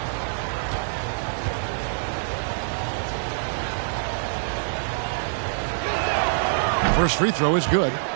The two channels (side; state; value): left; silent; digital silence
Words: First free throw is good.